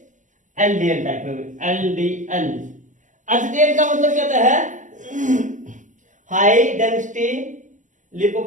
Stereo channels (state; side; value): late; left; 0.37 ms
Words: LDL टाइप में, LDL। HDL का मतलब क्या होता है? हाई डेंसिटी